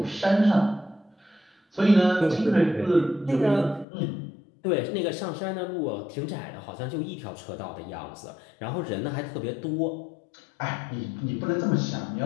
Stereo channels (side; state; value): right; drops out; at 3.9 s